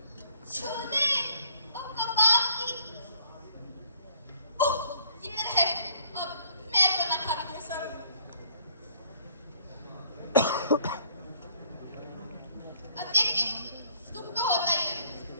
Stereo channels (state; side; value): inverted; both; correlation -0.61